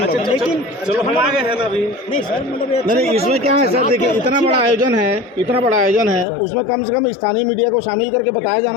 लोग। लेकिन चलो हम आगे हैं ना अभी। नहीं सर, मतलब नहीं, इसमें क्या है सर, देखिए इतना बड़ा आयोजन है, उसमें कम से कम स्थानीय मीडिया को शामिल करके बताया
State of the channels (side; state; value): right; drops out; at 6.2 s